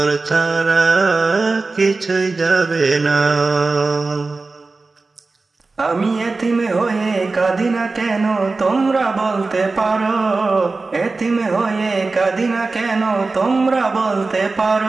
ছাড়া কিছুই যাবে না। আমি এতিম হয়ে কাঁদি না কেন তোমরা বলতে পারো, এতিম হয়ে কাঁদি না কেন তোমরা বলতে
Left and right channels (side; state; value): left; quieter; 3.7 dB